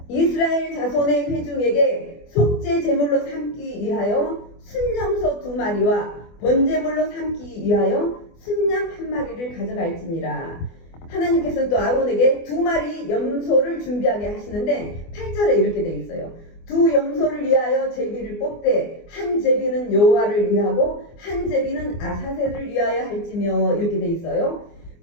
이스라엘 자손의 회중에게 속죄 제물로 삼기 위하여 순염소 2마리와 번제물로 삼기 위하여 순양 1마리를 가져갈지니라. 하나님께서는 또 아론에게 2마리 염소를 준비하게 하시는데 8절에 이렇게 돼 있어요. 2 염소를 위하여 제비를 뽑되 한 제비는 여호와를 위하고 한 제비는 아사셀을 위하여 할지며 이렇게 돼 있어요.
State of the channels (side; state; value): right; late; 24 ms